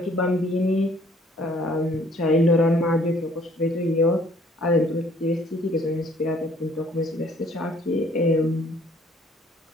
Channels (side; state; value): both; normal; correlation 0.59